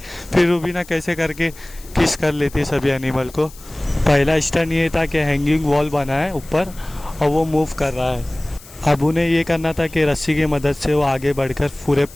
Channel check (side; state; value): left; noise; hiss, 21 dB below the sound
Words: फिर रुबीना कैसे करके किस कर लेती है सभी एनिमल को। पहला स्टंट ये था कि हैंगिंग वॉल बना है ऊपर और वो मूव कर रहा है। अब उन्हें ये करना था कि रस्सी की मदद से वो आगे बढ़कर पूरे